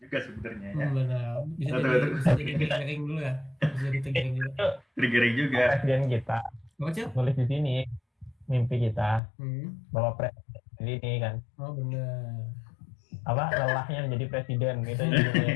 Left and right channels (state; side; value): drops out; right; at 9.2 s